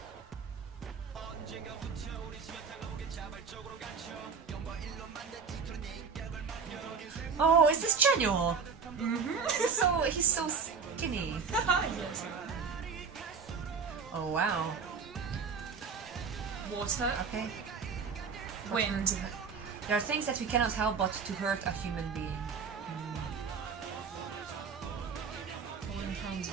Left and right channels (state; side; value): quieter; left; 5.7 dB